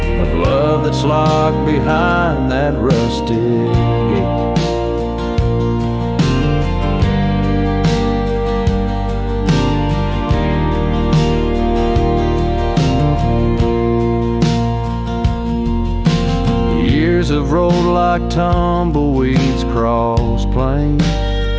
that's locked behind that rusted gate. Years have rolled like tumbleweeds across plains.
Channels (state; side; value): identical; both; correlation 1.00